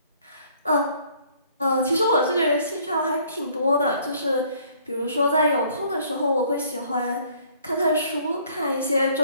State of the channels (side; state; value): both; inverted; correlation -0.60